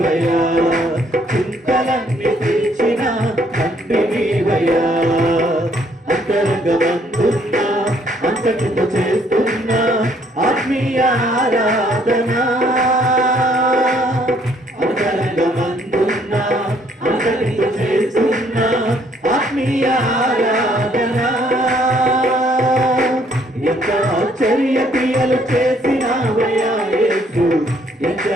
చింతలన్నీ తీర్చిన తండ్రివయ్యా. అంతరంగమందున్నా అంతటితో చేస్తున్నా ఆత్మీయ ఆరాధన, అంతరంగమందున్నా అంతటితో చేస్తున్నా ఆత్మీయ ఆరాధన. ఎంత ఆశ్చర్య క్రియలు చేసినావయ్యా యేసు,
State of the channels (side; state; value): both; normal; correlation 0.65